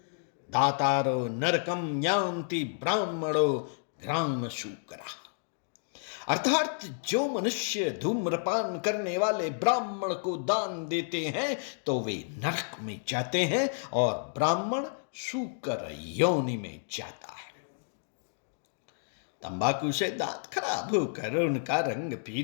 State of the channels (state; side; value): silent; right; digital silence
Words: दातारो नरकम यान्ति ब्राह्मणो ग्राम शूकरा। अर्थात जो मनुष्य धूम्रपान करने वाले ब्राह्मण को दान देते हैं तो वे नरक में जाते हैं, और ब्राह्मण शूकर योनि में जाता है। तंबाकू से दांत खराब होकर उनका रंग